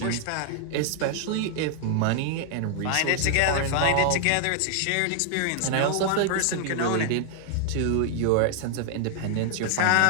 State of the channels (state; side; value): different; both; correlation -0.01